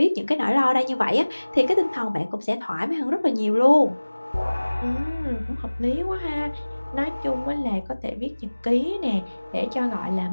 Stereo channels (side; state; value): both; inverted; correlation -1.00